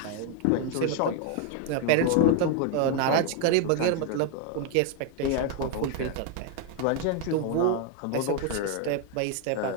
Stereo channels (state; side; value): different; both; correlation 0.01